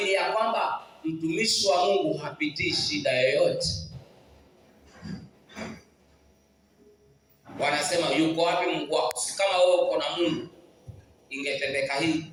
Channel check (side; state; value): both; identical; correlation 1.00